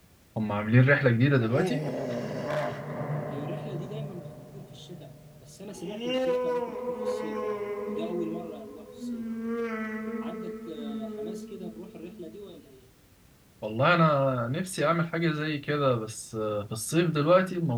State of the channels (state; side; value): identical; both; correlation 1.00